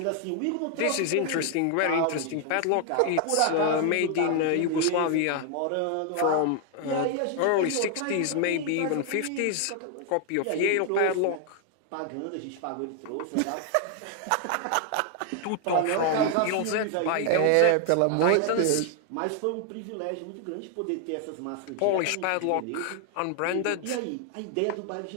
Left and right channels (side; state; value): both; different; correlation 0.00